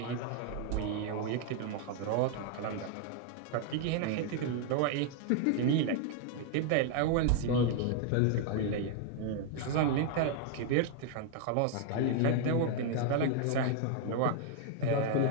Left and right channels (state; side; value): different; both; correlation 0.00